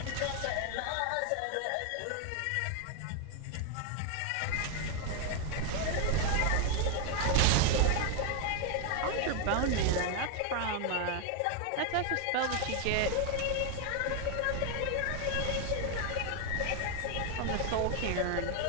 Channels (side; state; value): both; different; correlation 0.01